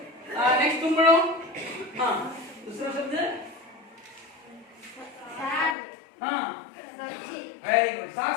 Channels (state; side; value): drops out; right; at 5.8 s